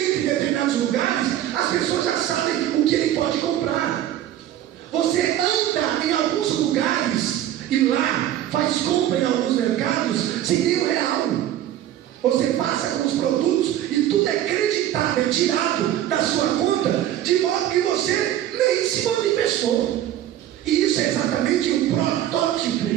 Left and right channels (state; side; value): quieter; left; 12.2 dB